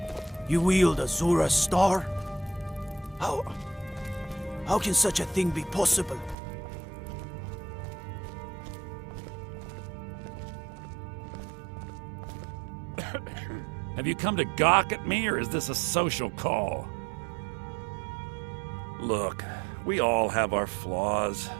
You wield Azura's star? How can such a thing be possible? Have you come to gawk at me, or is this a social call? Look, we all have our flaws.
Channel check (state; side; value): drops out; left; at 6.4 s